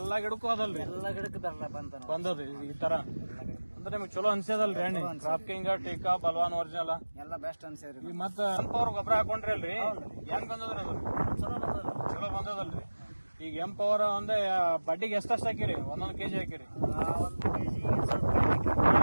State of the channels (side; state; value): both; inverted; correlation -1.00